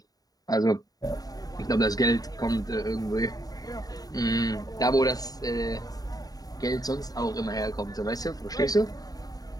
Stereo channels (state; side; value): late; right; 0.18 ms